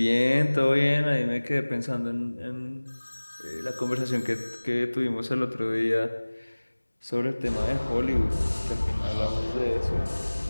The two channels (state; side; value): inverted; both; correlation -1.00